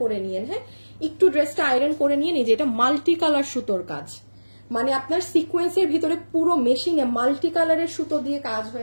করে নিয়েন। হ্যাঁ, একটু ড্রেসটা আয়রন করে নিয়ে নিয়ে, এটা মাল্টি কালার সুতোর কাজ, মানে আপনার সিকোয়েন্সের ভিতরে পুরো মেশিনে মাল্টি কালারের সুতো দিয়ে কাজ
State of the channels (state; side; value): inverted; both; correlation -1.00